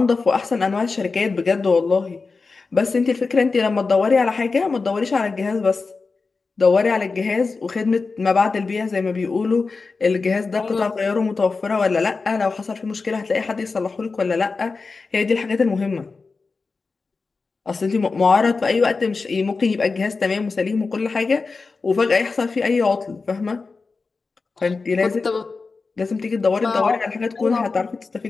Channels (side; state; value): right; quieter; 4.2 dB